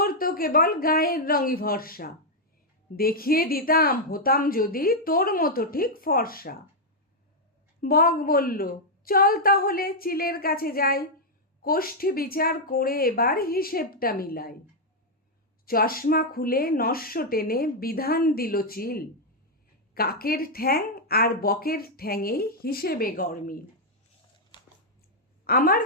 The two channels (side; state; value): both; normal; correlation -0.02